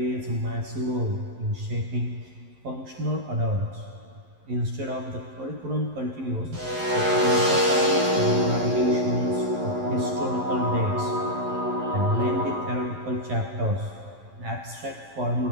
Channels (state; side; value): late; left; 11 ms